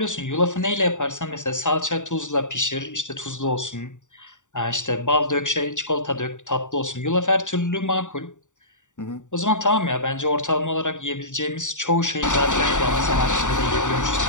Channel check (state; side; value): late; right; 0.86 ms